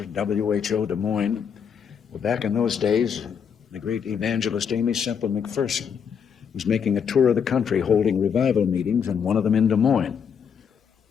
at WHO Des Moines. Well, back in those days, the great evangelist Amy Semple McPherson was making a tour of the country holding revival meetings, and one of them in Des Moines.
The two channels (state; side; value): quieter; right; 7.2 dB